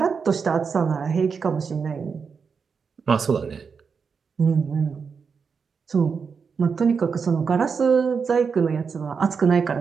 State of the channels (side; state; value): left; quieter; 5.7 dB